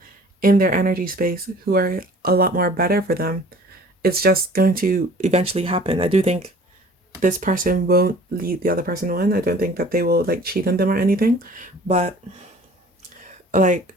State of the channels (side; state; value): both; normal; correlation 0.49